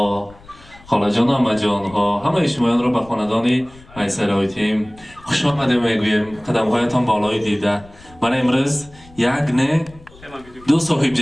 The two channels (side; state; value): left; noise; rumble, 23 dB below the sound